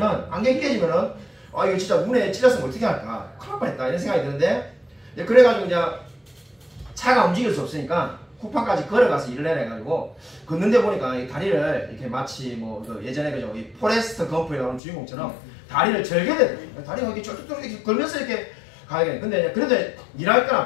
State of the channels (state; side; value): drops out; right; at 14.8 s